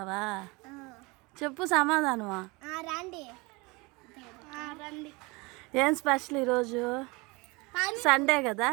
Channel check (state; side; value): quieter; left; 25.7 dB